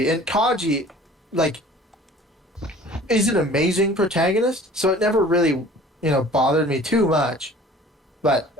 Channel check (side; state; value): both; normal; correlation 0.48